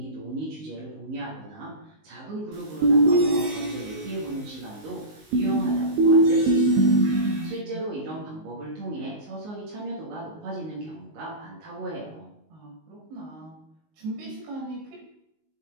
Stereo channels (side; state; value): left; late; 19 ms